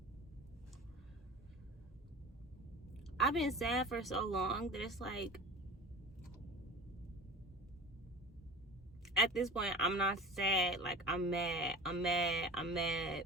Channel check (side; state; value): both; normal; correlation 0.35